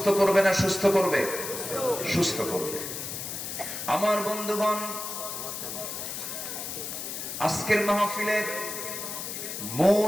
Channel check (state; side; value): noise; left; hiss, 6 dB below the sound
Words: করবে না সুস্থ করবে? সুস্থ করবে। আমার বন্ধুগণ, আজকের মাহফিলের